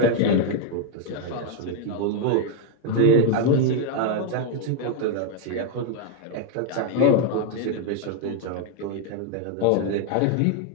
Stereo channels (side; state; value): both; different; correlation 0.00